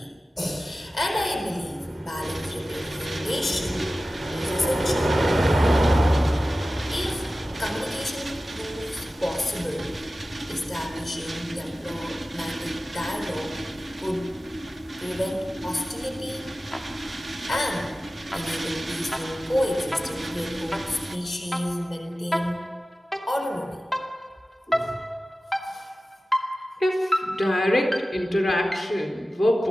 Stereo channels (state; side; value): normal; both; correlation 0.95